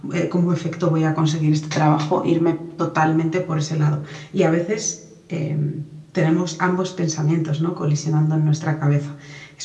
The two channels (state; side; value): identical; both; correlation 1.00